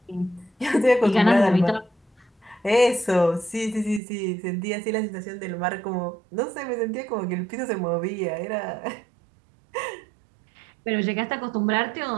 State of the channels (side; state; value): left; drops out; at 4.0 s